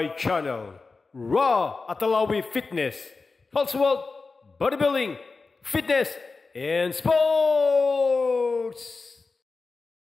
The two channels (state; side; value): quieter; right; 4.1 dB